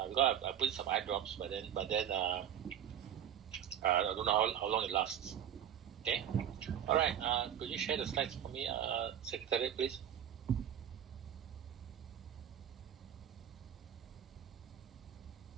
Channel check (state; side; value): quieter; left; 9.7 dB